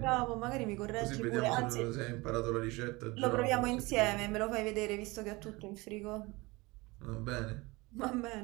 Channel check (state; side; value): quieter; left; 23.4 dB